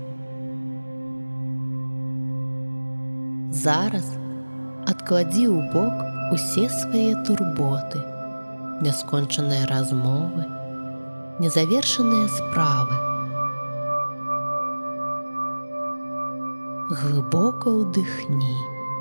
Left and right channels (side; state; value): both; inverted; correlation -1.00